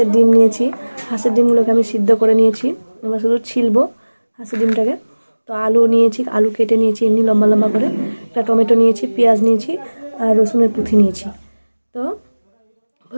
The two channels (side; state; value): both; inverted; correlation -1.00